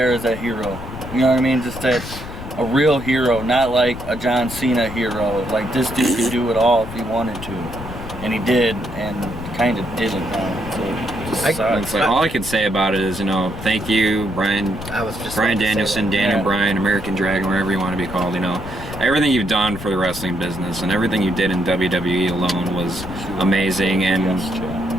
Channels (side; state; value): left; noise; rumble, 10 dB below the sound